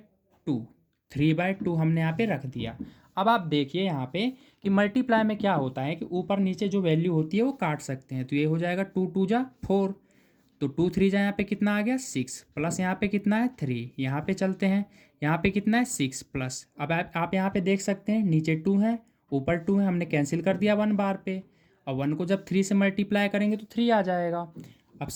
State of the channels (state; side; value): identical; both; correlation 1.00